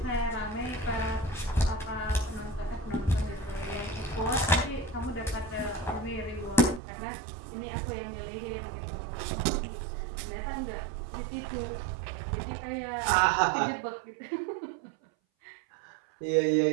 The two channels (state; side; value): drops out; left; at 6.8 s